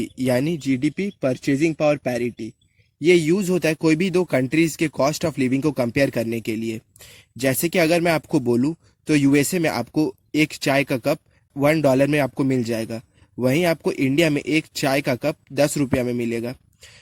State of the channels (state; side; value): identical; both; correlation 1.00